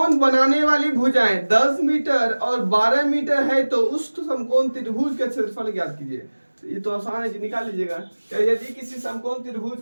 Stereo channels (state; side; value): inverted; both; correlation -1.00